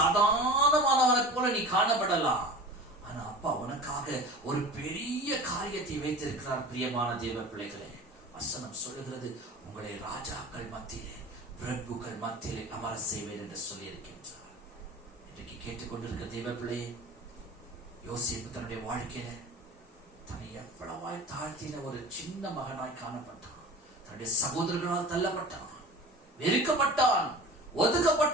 போல நீ காணப்படலாம். ஆனா அப்பா உனக்காக ஒரு பெரிய காரியத்தை வைத்திருக்கிறார். பிரியமான தேவ பிள்ளைகளே, வசனம் சொல்லுகிறது, உங்களை ராஜாக்கள் மத்தியிலே, பிரபுக்கள் மத்தியிலே அமர செய்வேன் என்று சொல்லி இருக்கின்றார். இன்றைக்கு கேட்டுக்கொண்டிருக்கிற தேவ பிள்ளையே, யோசேப்பு தன்னுடைய வாழ்க்கையில தன்னை எவ்வளவாய் தாழ்த்தின ஒரு சின்ன மகனாய் காணப்பட்டான். தன்னுடைய சகோதரர்களால் தள்ளப்பட்டான், வெறுக்கப்பட்டான்,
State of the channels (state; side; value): normal; both; correlation 0.37